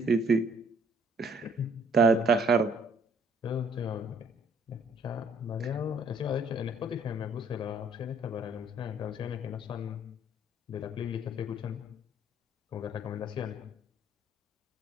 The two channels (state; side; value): normal; both; correlation 0.62